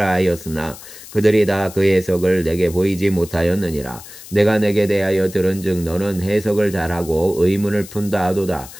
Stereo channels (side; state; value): left; noise; hiss, 16 dB below the sound